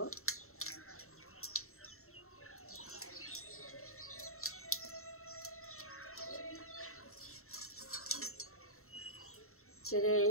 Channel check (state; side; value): late; right; 0.63 ms